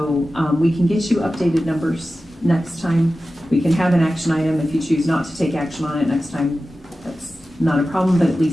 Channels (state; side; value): normal; both; correlation 0.94